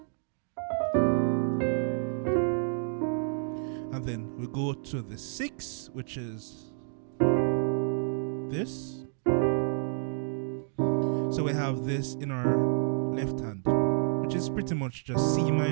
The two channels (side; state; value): left; silent; digital silence